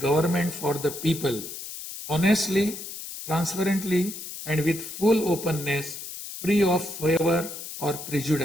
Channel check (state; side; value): noise; left; hiss, 10 dB below the sound